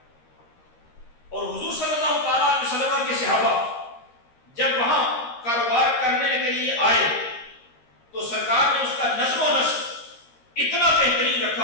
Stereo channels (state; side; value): late; right; 13 ms